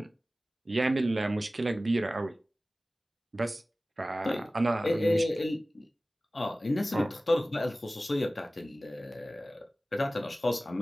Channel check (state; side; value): normal; both; correlation 0.97